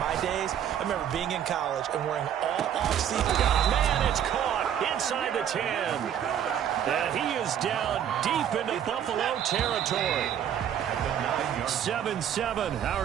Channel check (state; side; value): quieter; left; 9.6 dB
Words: days, I remember being in college and wearing all off-season. Man, it's caught inside the 10. And he is down deep into Buffalo territory. 7-7,